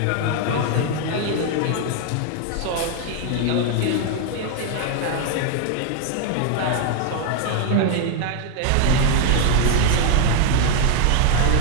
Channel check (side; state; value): both; different; correlation 0.00